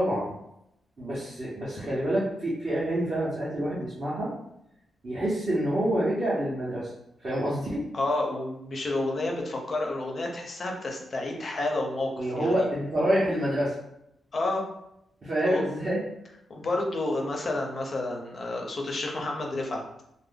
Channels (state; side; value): normal; both; correlation 0.86